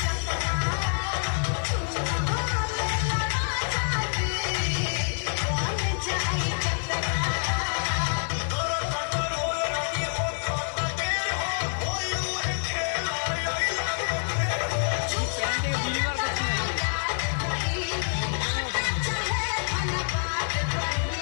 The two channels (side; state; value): right; silent; 60 dB below the other